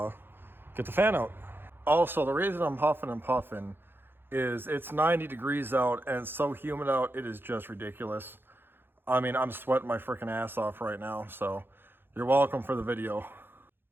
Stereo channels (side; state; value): left; late; 0.10 ms